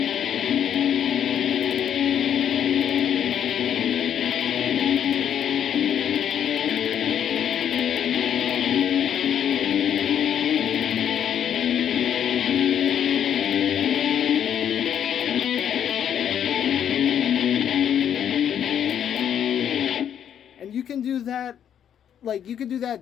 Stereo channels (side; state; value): right; quieter; 9.3 dB